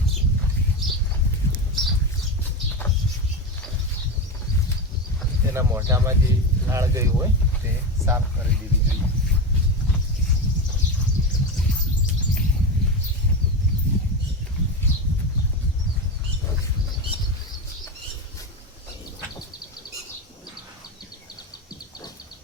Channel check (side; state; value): both; normal; correlation 0.18